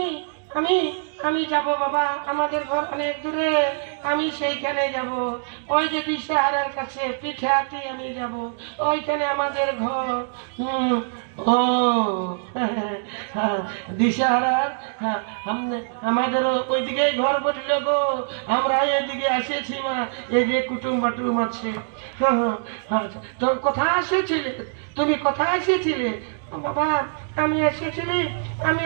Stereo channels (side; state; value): left; silent; digital silence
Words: আমি আমি যাব বাবা, আমাদের ঘর অনেক দূরে, আমি সেইখানে যাব। ওই যে দিশাহারার কাছে পিঠে হাতি আমি যাব, ওইখানে আমাদের ঘর। ও দিশাহারার আমাদেরও ওইদিকে ঘর বসল গো, আমরা এদিকে এসেছি মা, এই যে কুটুম বাটুম আছে। তো কোথায় এসেছিলে তুমি, কোথায় এসেছিলে? বাবা আমি এসেছিলি